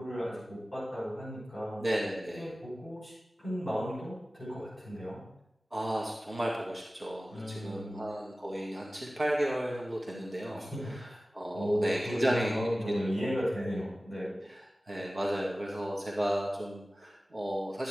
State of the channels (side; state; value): both; normal; correlation 0.96